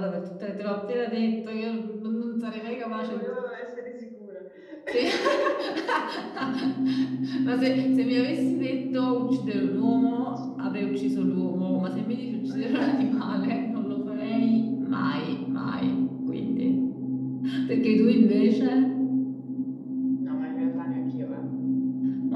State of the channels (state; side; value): identical; both; correlation 1.00